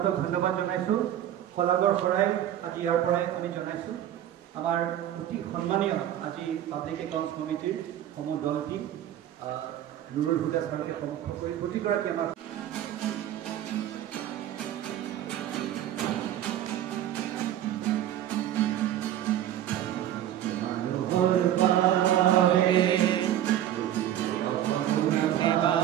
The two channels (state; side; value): quieter; left; 11.7 dB